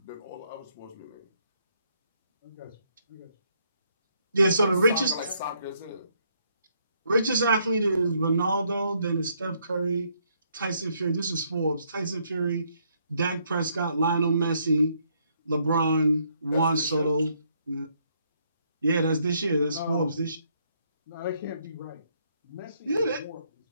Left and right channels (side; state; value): both; inverted; correlation -0.71